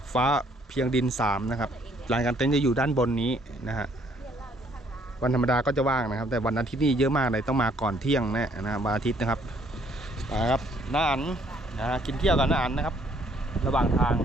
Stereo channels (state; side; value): normal; both; correlation 0.65